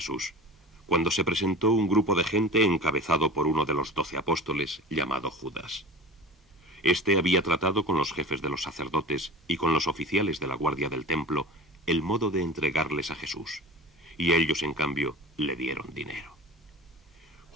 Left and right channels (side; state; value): both; normal; correlation 0.35